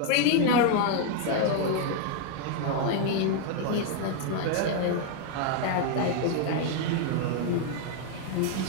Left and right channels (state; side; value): different; both; correlation 0.00